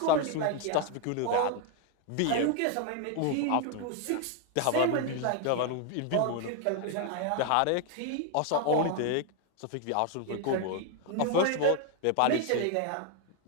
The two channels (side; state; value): both; different; correlation 0.01